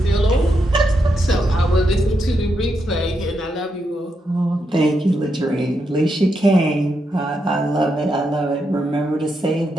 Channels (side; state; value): both; normal; correlation 0.82